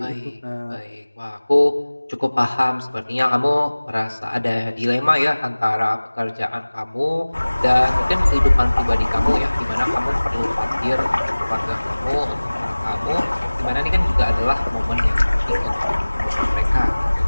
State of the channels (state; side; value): inverted; both; correlation -1.00